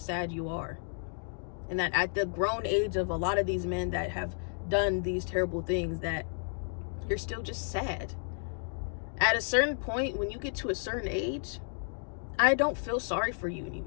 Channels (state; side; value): silent; right; digital silence